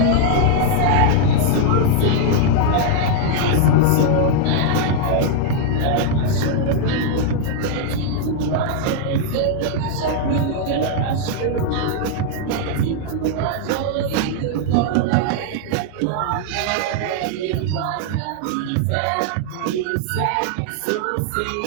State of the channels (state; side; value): different; both; correlation 0.00